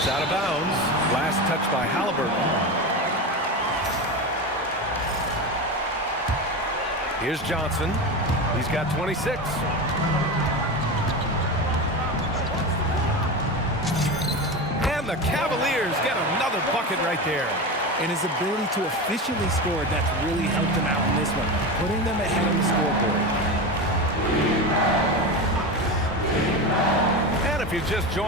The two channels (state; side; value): normal; both; correlation 0.22